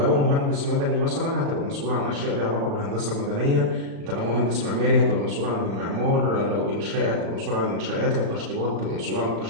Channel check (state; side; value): late; left; 35 ms